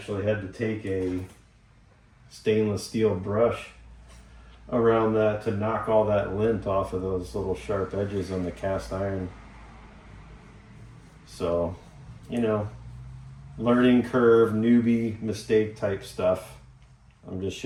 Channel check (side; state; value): both; identical; correlation 1.00